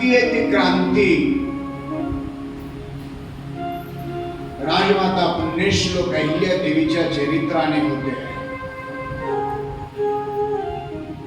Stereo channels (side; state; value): both; identical; correlation 1.00